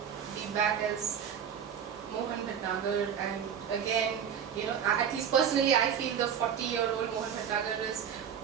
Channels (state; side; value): quieter; left; 8.2 dB